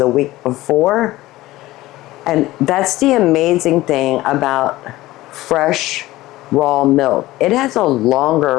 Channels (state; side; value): quieter; right; 17.4 dB